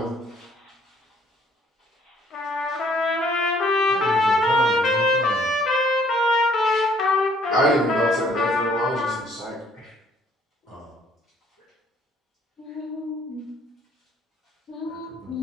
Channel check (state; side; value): normal; both; correlation 0.62